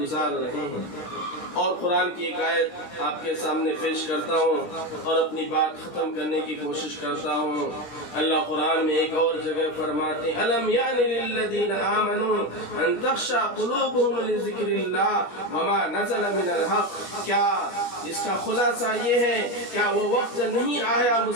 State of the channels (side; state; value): right; late; 17 ms